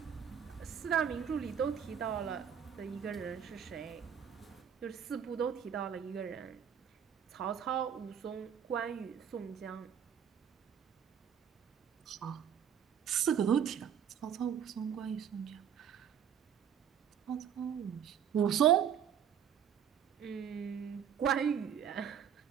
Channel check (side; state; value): left; quieter; 8.4 dB